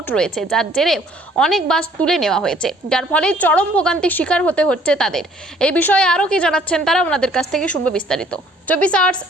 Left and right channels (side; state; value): both; normal; correlation 0.59